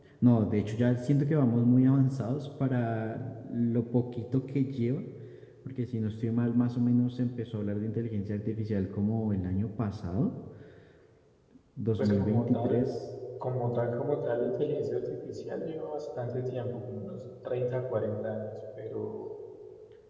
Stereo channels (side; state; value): both; identical; correlation 1.00